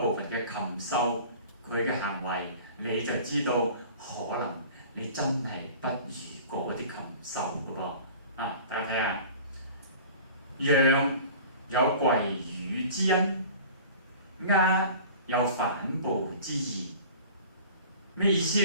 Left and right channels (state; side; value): inverted; both; correlation -0.42